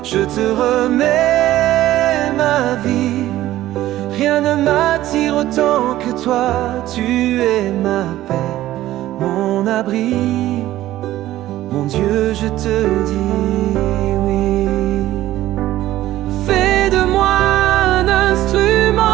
Je te remets ma vie, rien ne m'attire autant que toi. Tu es ma paix, mon abri. Mon Dieu, je te dis oui. Fais de moi un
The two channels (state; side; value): quieter; left; 14.7 dB